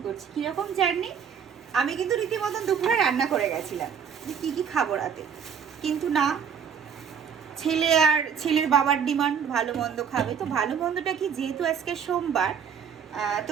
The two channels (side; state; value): left; quieter; 7.2 dB